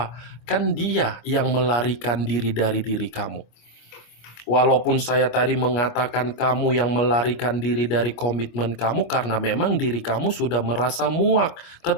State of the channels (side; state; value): right; late; 25 ms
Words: Kan dia yang melarikan diri dari diri kamu. Walaupun saya tadi mengatakan kamu yang melarikan diri dari komitmen kamu karena memang diri kamu sudah merasa muak.